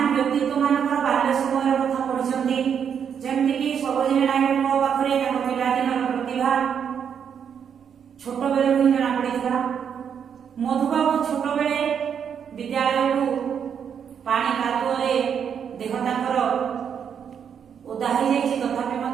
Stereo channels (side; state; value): left; quieter; 7.7 dB